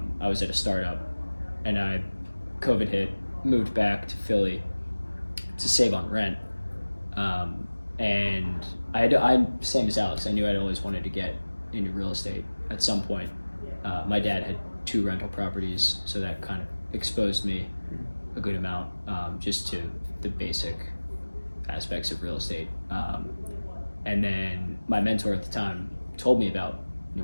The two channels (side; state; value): both; inverted; correlation -1.00